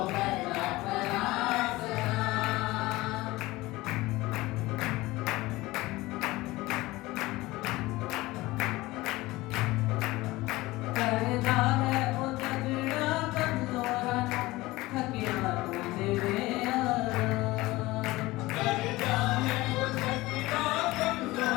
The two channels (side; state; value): right; quieter; 19.6 dB